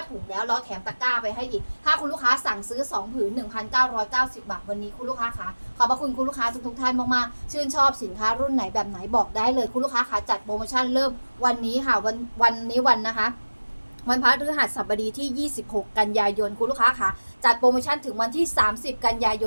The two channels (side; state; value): both; inverted; correlation -1.00